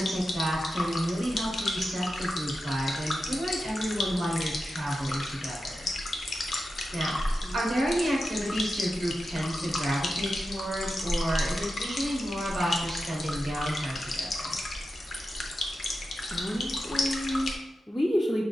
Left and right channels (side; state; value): both; normal; correlation 0.91